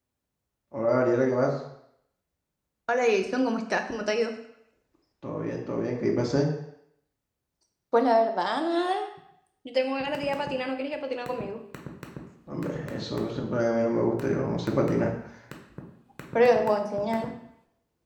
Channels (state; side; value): identical; both; correlation 1.00